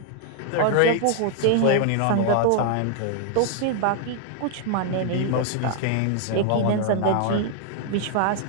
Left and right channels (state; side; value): different; both; correlation 0.00